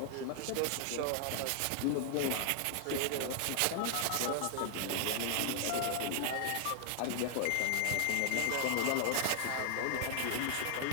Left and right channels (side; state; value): both; different; correlation 0.00